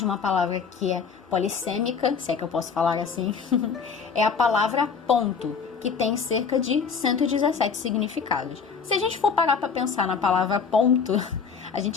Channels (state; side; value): quieter; right; 5.9 dB